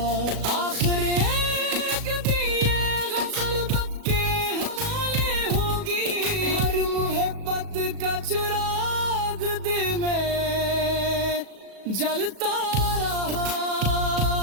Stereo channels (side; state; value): left; late; 37 ms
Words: आखिर एक दिए गजल बक के हवाले होगी, हर मोहब्बत का चिराग दिल में जलता रहा।